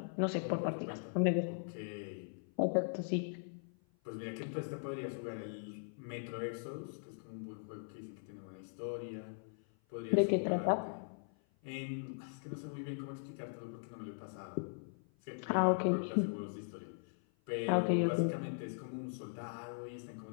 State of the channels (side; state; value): right; silent; 51 dB below the other